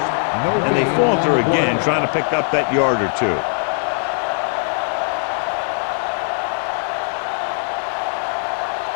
And they falter again, trying to pick up that yard or two.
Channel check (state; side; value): silent; right; 66 dB below the other